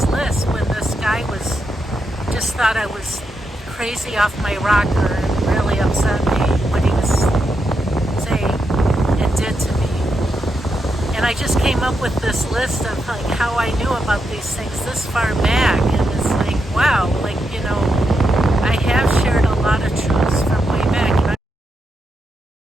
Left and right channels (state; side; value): normal; both; correlation 0.84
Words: list when this guy just thought I was crazy off my rocker and really upset me what he was saying and did to me. And I just came up with this list of how I knew about these things this far back, and it's like, wow, I have shared a lot of truths from way back.